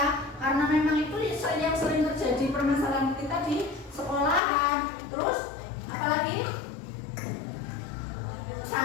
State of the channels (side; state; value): right; drops out; at 4.4 s